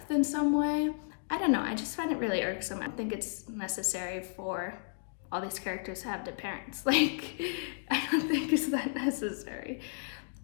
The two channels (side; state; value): right; silent; digital silence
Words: in some way. I don't know, I just find it really irksome. I don't think it's necessary for all these characters to have dead parents. Like, I don't think it's that necessary.